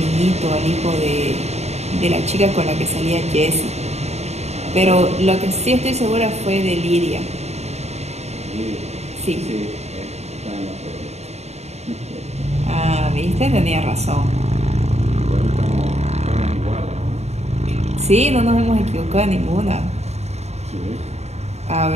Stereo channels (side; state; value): left; late; 0.32 ms